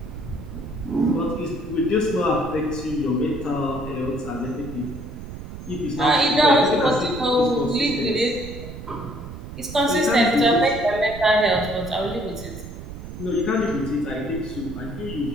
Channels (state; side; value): noise; right; rumble, 11 dB below the sound